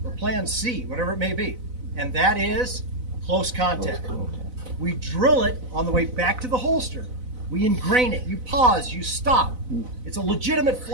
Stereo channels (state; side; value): late; left; 4.0 ms